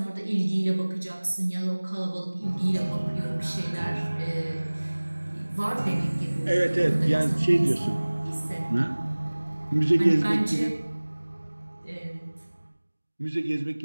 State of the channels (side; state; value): both; inverted; correlation -1.00